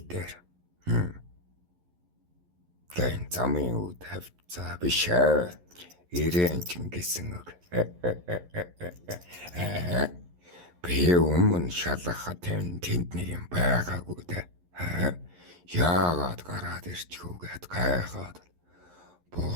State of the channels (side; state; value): left; late; 11 ms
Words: дээр гэн замын үд хавцаа биш ирээн чингэсэн үг. Би өмнө шалгахад тэнд нэг юм байгаагүй дээ. Яагаад гараад ирчихвгээд гайхаад